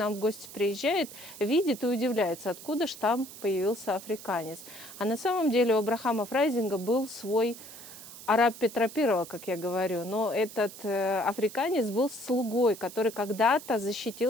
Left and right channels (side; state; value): right; noise; hiss, 15 dB below the sound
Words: в гости приезжает, видит и удивляется, откуда ж там появился африканец. А на самом деле у Абрахама Фрайзинга был свой араб Петра I, как я говорю, но этот африканец был слугой, который когда-то